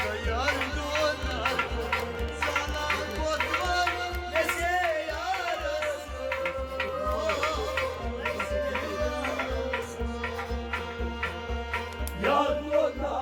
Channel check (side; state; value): both; identical; correlation 1.00